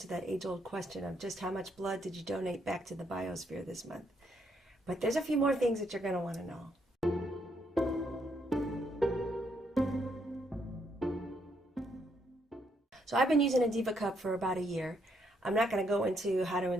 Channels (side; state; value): both; normal; correlation 0.74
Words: that age-old question of just how much blood did you donate back to the biosphere this month. But there's a few more things that you're going to want to know. So I've been using a Diva Cup for about a year. I'm not going to go into how to